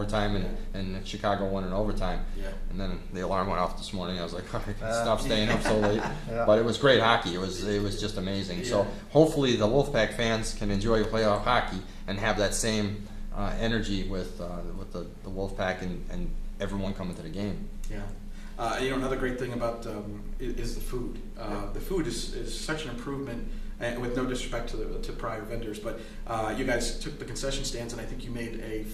and Chicago won in overtime. Yeah. And then the alarm went off this morning. I was like, I can't stop staying up so late. But it was great hockey. It was just amazing. So hopefully the Wolfpack fans can enjoy playoff hockey and have that same energy with the Wolfpack and everyone coming to the game. Yeah. Another great thing about is the food. The food is such an improvement, and with no disrespect to prior vendors, but you guys took the concession stands, and I think you made a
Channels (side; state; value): both; identical; correlation 1.00